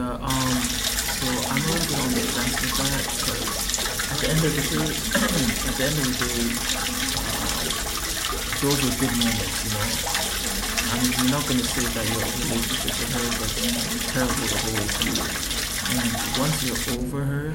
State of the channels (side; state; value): both; identical; correlation 1.00